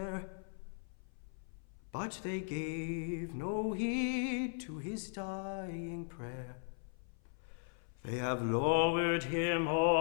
but they gave no heed to his dying prayer. They have lowered him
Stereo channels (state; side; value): silent; right; 52 dB below the other